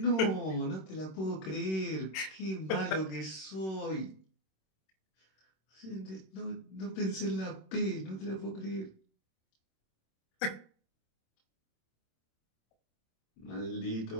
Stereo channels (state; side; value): late; right; 26 ms